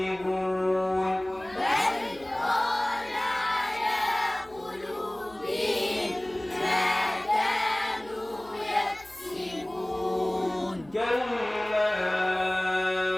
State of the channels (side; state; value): left; noise; hum, 25 dB below the sound